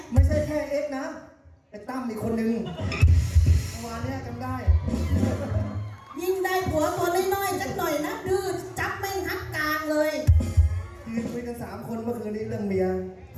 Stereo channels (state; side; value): identical; both; correlation 1.00